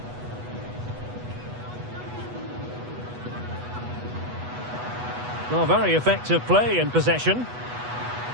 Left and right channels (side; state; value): left; late; 8.2 ms